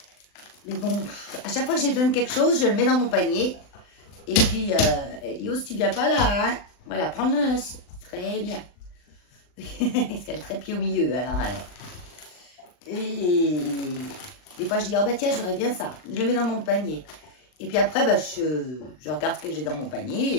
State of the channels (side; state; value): right; late; 39 ms